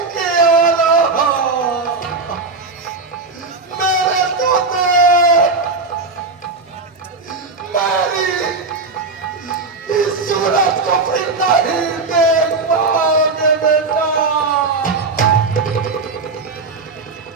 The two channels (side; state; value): left; quieter; 3.9 dB